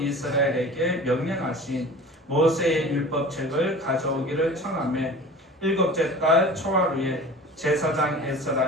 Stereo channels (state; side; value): normal; both; correlation 0.39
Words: 명령하신 모세의 율법책을 가져오기를 청하매, 일곱째 달 초하루에 제사장